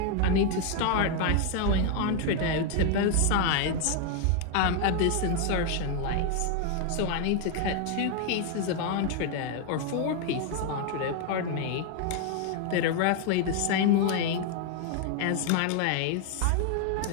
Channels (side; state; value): both; different; correlation 0.00